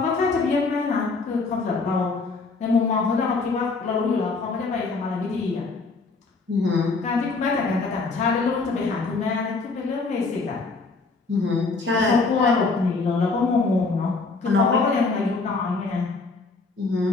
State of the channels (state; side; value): quieter; right; 4.0 dB